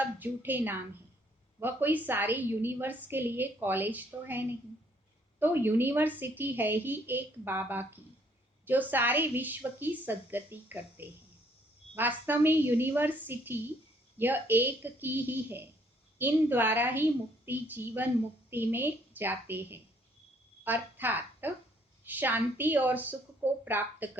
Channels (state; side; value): normal; both; correlation 0.65